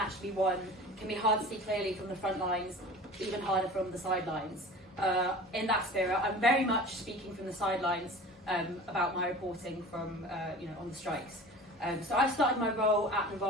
be won can be hard to see clearly from the front lines, even harder from the sidelines. In that spirit, I'm very much speaking from the sidelines about my reporting from, on the strikes. So I started my role at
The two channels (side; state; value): both; normal; correlation 0.39